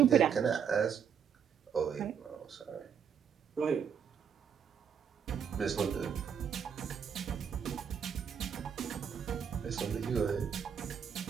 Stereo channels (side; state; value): left; quieter; 7.6 dB